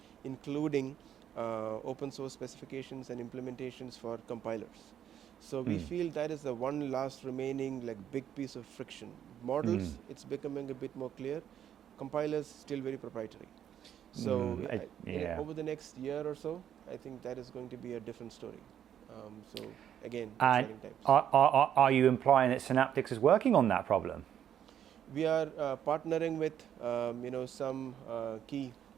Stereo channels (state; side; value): quieter; left; 9.8 dB